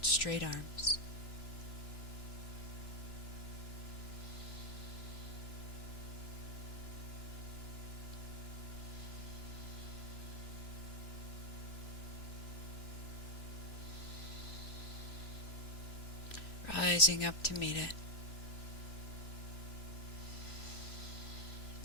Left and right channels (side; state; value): right; late; 2.9 ms